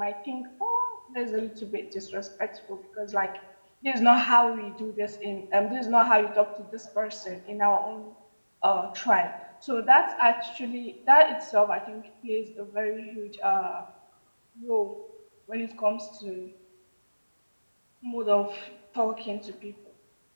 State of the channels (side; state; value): both; inverted; correlation -1.00